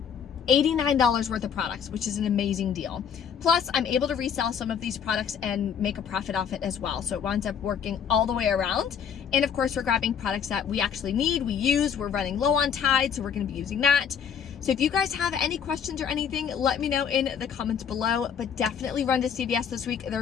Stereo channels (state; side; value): quieter; right; 7.6 dB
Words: $89 worth of products, which is an amazing deal. Plus, I'm able to resell some of these products and make a profit off it as well. So it winds up working all the way around. And of course, we're grabbing products that we actually need, we use, we're running low on Tide, so we're gonna be using that. So if you guys have any questions or anything, let me know in the comments below, but definitely run to CVS this week.